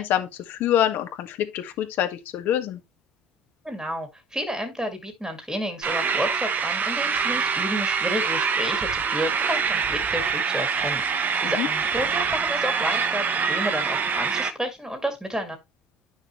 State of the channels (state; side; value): normal; both; correlation 0.45